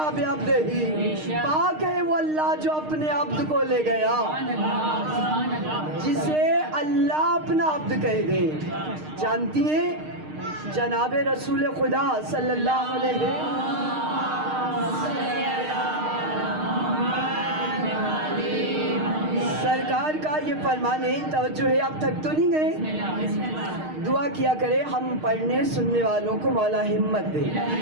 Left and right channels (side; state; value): left; late; 6.5 ms